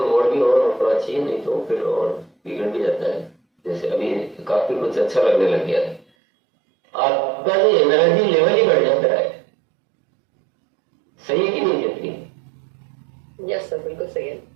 भी ऑन होना चाहिए, नहीं तो फिर और बिगड़ भी जाता है। जैसे अभी काफी कुछ अच्छा लगने लग गया है, आपका जो एनर्जी लेवल ही बढ़ जाता है। सही है कि नहीं जितनी? यस सर, बिल्कुल सही है।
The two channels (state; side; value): drops out; left; at 6.1 s